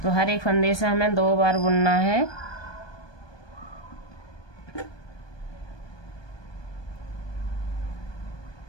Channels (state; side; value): late; right; 1.2 ms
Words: तो हर एक फंदे से हमें 2 बार बुनना है।